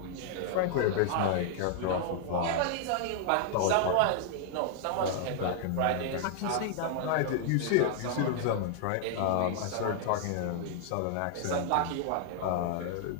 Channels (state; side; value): different; both; correlation 0.00